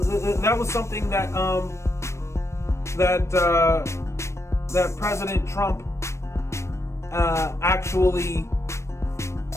President Trump actually.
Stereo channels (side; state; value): right; late; 0.13 ms